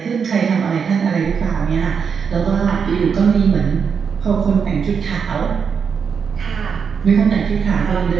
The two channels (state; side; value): quieter; left; 6.4 dB